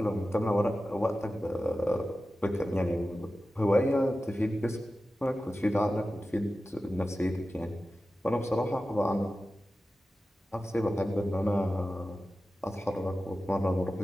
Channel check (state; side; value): normal; both; correlation 0.94